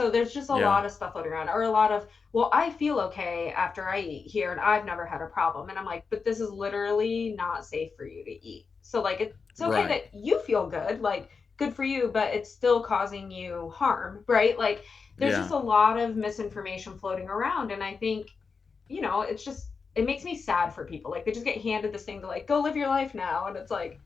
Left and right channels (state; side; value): quieter; right; 5.1 dB